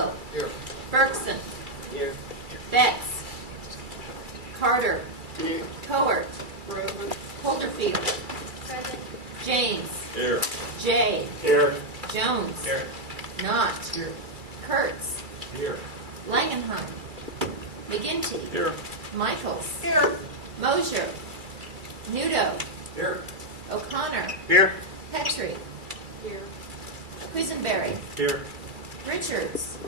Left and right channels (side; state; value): left; late; 2.3 ms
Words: Here. Bergson. Here. Betts. Carter. Here. Cowart. Present. Holderfield. Present. James. Here. Jay. Here. Jones. Here. Knott. Here. Kurtz. Here. Langenheim. McGinty. Here. Michaels. Here. Mosier. Nudo. Here. O'Connor. Here. Petrie. Here. Quisenberry. Here. Richards.